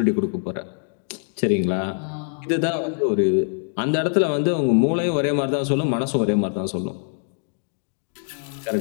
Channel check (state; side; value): silent; right; digital silence